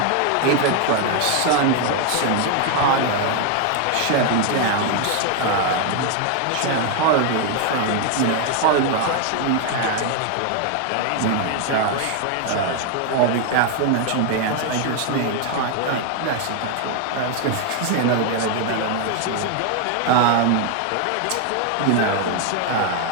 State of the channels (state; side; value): different; both; correlation 0.01